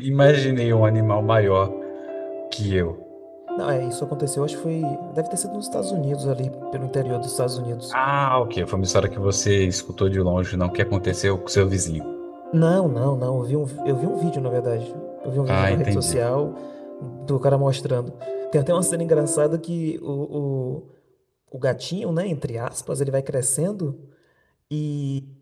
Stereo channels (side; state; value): both; identical; correlation 1.00